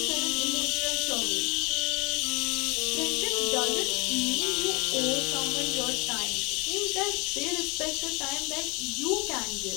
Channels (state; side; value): quieter; right; 28.5 dB